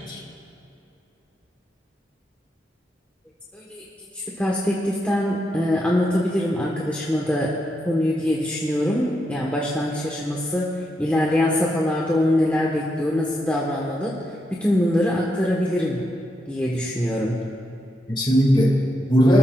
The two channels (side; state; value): both; normal; correlation 0.82